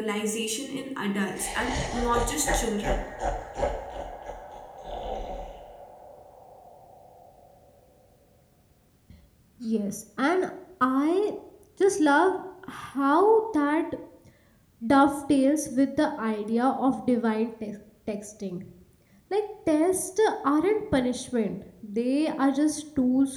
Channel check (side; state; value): both; identical; correlation 1.00